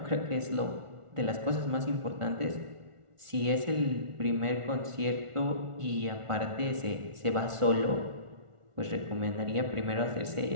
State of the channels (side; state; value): left; late; 1.4 ms